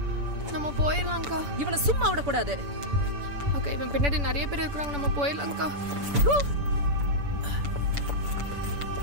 நம்ம போயிடலாம் அக்கா. இவனை சும்மா விடக்கூடாது. அக்கா இவன் பின்னாடி நிறைய பேர் இருக்கிறாங்க. நம்ம போயிடலாம் அக்கா.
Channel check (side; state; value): left; late; 7.0 ms